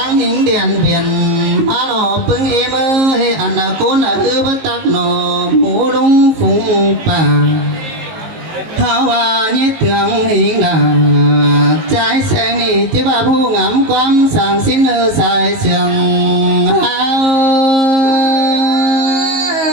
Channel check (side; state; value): left; late; 19 ms